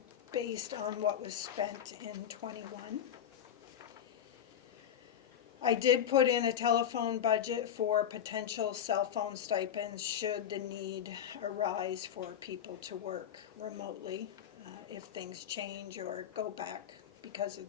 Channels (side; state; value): right; quieter; 9.5 dB